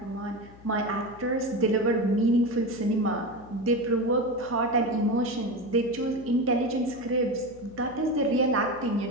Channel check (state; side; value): noise; left; hum, 21 dB below the sound